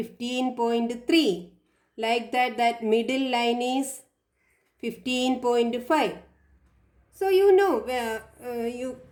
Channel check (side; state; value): both; identical; correlation 1.00